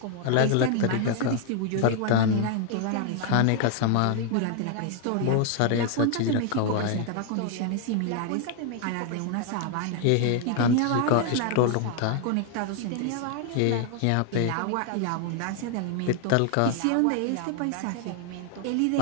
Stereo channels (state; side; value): different; both; correlation 0.00